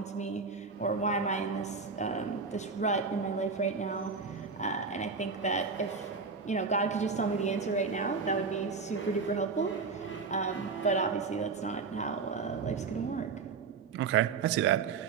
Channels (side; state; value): left; quieter; 4.9 dB